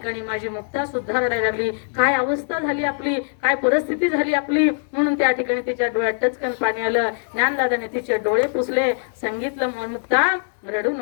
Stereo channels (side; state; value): right; silent; 60 dB below the other